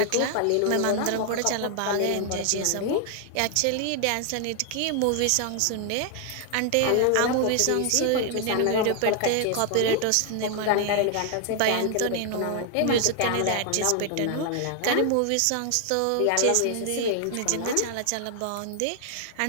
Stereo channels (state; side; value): different; both; correlation 0.00